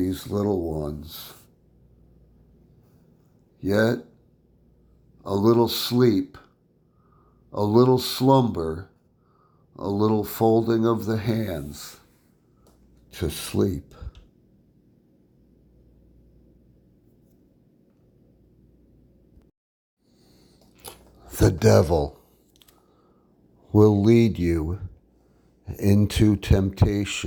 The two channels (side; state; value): both; identical; correlation 1.00